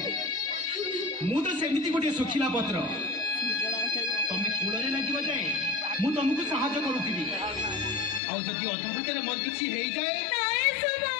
मु तो सेमिति गोटे सुखिला पत्र तमे कोड़े लगिबा जाए मु तुमको सहायता करूथीबी आउ जदि अधा बाटर मोर किछि हेई जाए नहीं सुबह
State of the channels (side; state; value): right; drops out; at 8.2 s